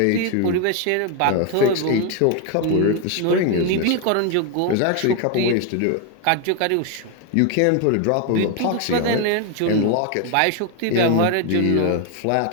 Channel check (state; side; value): different; both; correlation 0.01